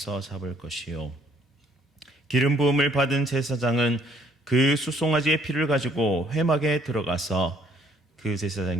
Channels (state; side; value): normal; both; correlation 0.64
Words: 잡을 것이요, 기름 부음을 받은 제사장은 그 수송아지의 피를 가지고 회막에 들어가서 그